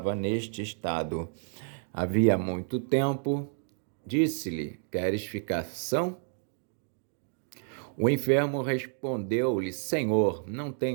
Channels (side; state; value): left; silent; 58 dB below the other